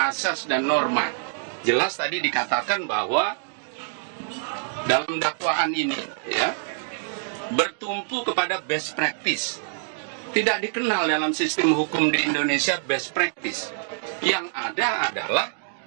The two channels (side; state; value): left; silent; digital silence